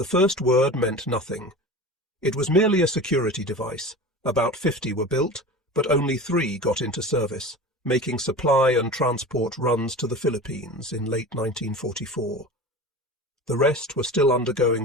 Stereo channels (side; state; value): both; normal; correlation 0.33